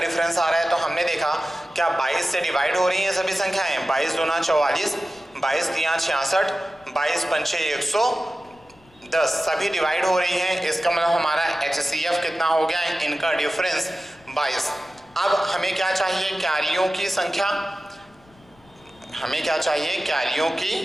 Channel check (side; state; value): left; noise; rumble, 29 dB below the sound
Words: आ रहा है। तो हमने देखा क्या 22 से डिवाइड हो रही हैं सभी संख्याएं? 22 दूना 44, 22 तिया 66, 22 पंचे 110, सभी डिवाइड हो रही हैं। इसका मतलब हमारा HCF कितना हो गया? इनका डिफरेंस 22। अब हमें क्या चाहिए? क्यारियों की संख्या। हमें क्या चाहिए? क्यारियों